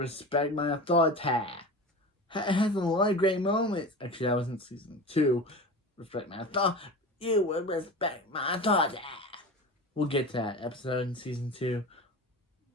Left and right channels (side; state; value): both; normal; correlation 0.31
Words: My Authority. It has a lot of great moments. Actually, that wasn't season 2. Respect My Authority. You would respect my authority. We'll get to that episode in season 2.